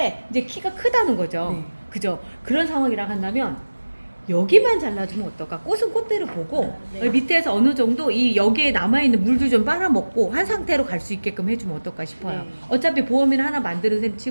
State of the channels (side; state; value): both; inverted; correlation -1.00